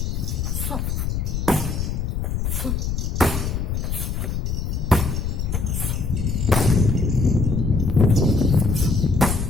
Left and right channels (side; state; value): left; noise; rumble, 1 dB below the sound